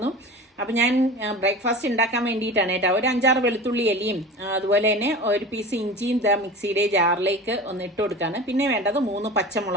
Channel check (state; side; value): normal; both; correlation 0.34